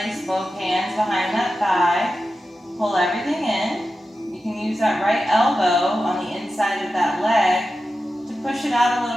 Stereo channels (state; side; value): normal; both; correlation 0.92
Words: both hands behind that thigh. Pull everything in. You can use that right elbow on the inside of that leg to push it out a